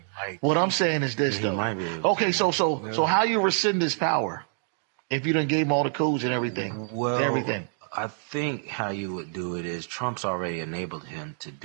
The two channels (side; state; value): left; silent; 60 dB below the other